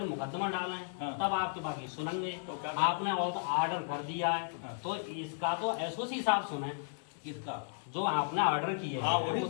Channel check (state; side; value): silent; right; digital silence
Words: मुकदमा डालें, तब आपके बाकी सुनेंगे। आपने ऑर्डर कर दिया है तो इसका तो एसओसी साहब सुने। किसका? जो आपने ऑर्डर किए है